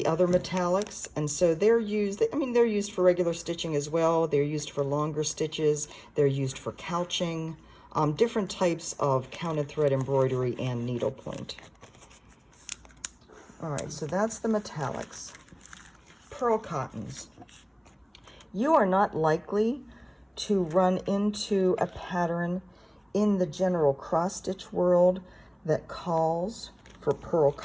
other metallics, and so they're used, I mean, they're used for regular stitching as well. They're used for longer stitches. They're used for couching. Different types of counted thread embroidery and needlepoint. All right, so that's the metallics. Pearl cottons. You are not likely to run into a pattern in the general cross-stitch world that calls for pearl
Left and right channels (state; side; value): identical; both; correlation 1.00